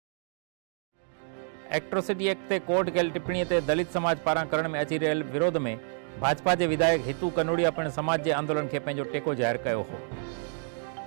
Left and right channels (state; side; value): silent; left; 59 dB below the other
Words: एट्रोसिटी एक्ट ते कोर्ट कयल टिप्पणी ते दलित समाज पारां करण में अची रहियल विरोध में भाजपा के विधायक हितू कनोडिया पिणु समाज के आंदोलन के पंहिंजो टेको ज़ाहिर कयो हो।